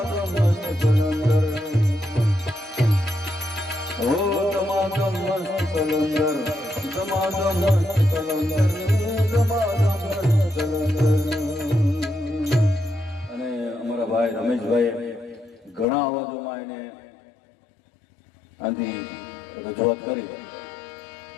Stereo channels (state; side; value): drops out; right; at 15.9 s